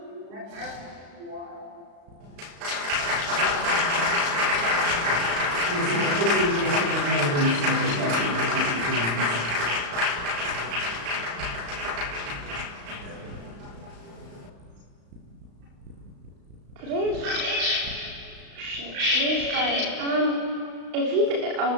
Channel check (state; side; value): late; left; 35 ms